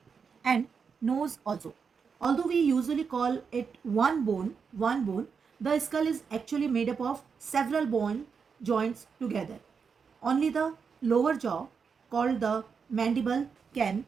and nose also. Although we usually call it one bone, the skull is actually made up of several bone joints together. Only the lower jaw, called the mandible, can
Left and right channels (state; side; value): quieter; left; 5.9 dB